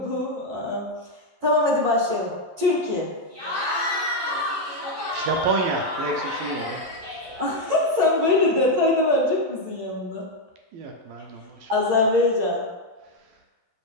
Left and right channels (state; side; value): late; left; 11 ms